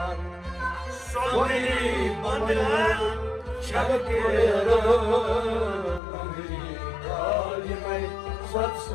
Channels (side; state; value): right; drops out; at 6.0 s